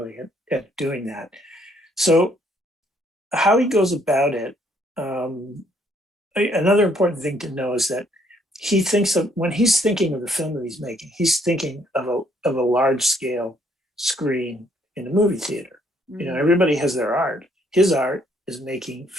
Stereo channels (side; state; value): both; normal; correlation 0.67